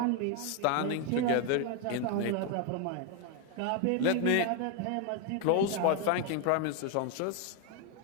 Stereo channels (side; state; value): both; different; correlation 0.01